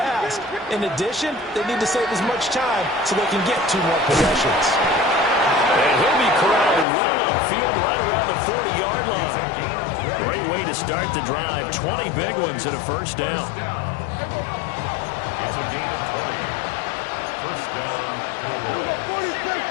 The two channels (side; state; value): right; drops out; at 6.9 s